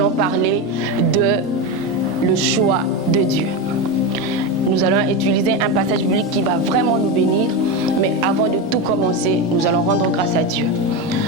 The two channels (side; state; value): both; normal; correlation 0.15